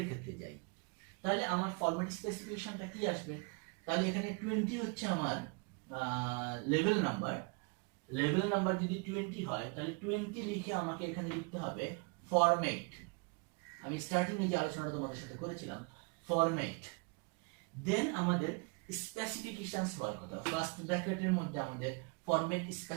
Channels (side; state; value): left; quieter; 31.6 dB